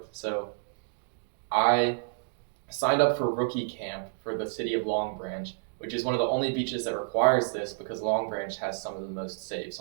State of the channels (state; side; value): silent; left; digital silence